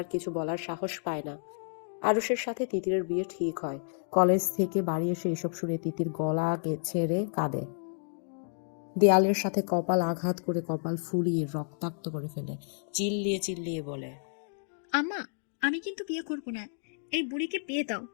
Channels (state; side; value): silent; right; digital silence